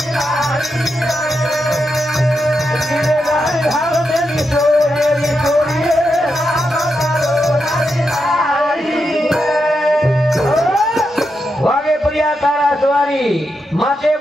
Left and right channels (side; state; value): both; normal; correlation 0.85